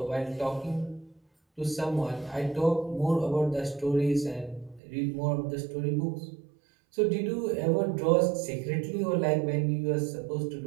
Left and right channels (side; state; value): left; drops out; at 4.8 s